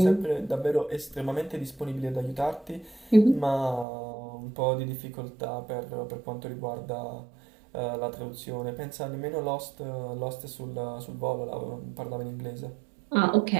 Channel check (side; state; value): left; drops out; at 3.9 s